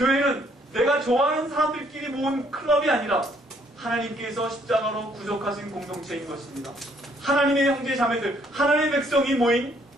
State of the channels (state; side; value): normal; both; correlation 0.66